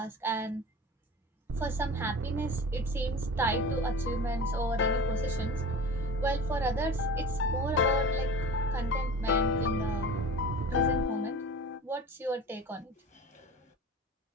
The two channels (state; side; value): normal; both; correlation 0.36